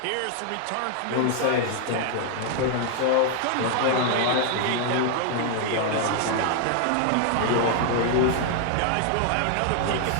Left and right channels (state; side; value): different; both; correlation 0.00